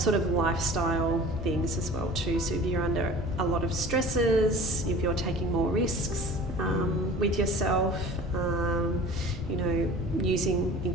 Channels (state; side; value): normal; both; correlation 0.42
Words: of lifestyle things as well too. So if you're under a lot of stresses, if you're taking more risks with yourself, using